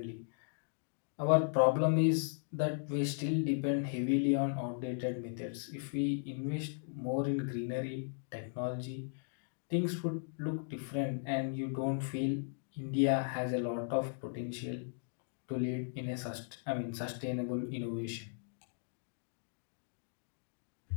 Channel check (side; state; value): right; silent; digital silence